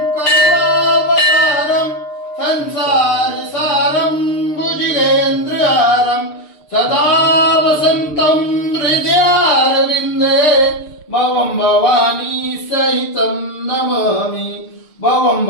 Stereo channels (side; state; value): right; late; 6.6 ms